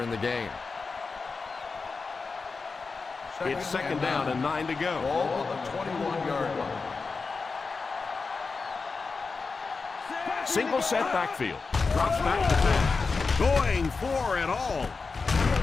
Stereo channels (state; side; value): quieter; right; 4.4 dB